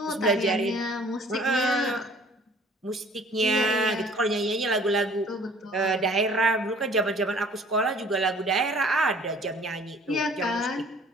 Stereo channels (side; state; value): both; normal; correlation 0.52